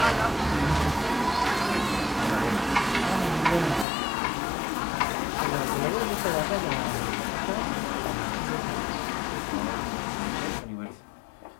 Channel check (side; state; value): right; drops out; at 3.9 s